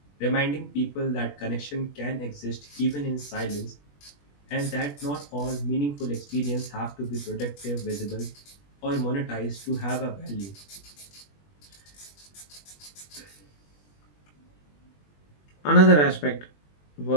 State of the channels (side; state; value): right; late; 21 ms